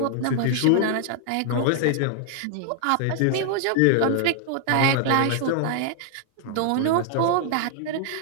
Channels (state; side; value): different; both; correlation 0.00